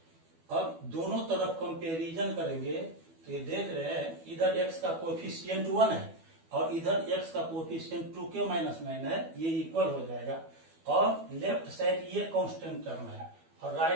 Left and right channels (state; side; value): late; left; 12 ms